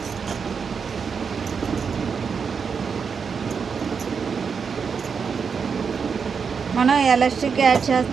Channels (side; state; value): left; quieter; 6.0 dB